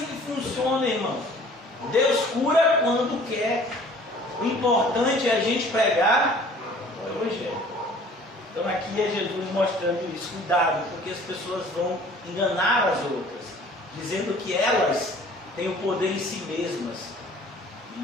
que funciona, irmãos. Deus cura quando quer. O importante é a gente pregar o evangelho. Então aqui é Jesus mostrando isso. Cuidado, porque as pessoas vão enganar as outras, dizendo que elas têm o poder em si mesmas.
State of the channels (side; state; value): both; normal; correlation 0.51